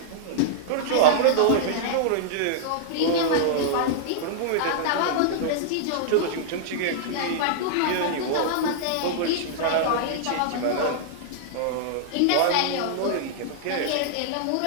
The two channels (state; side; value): different; both; correlation -0.01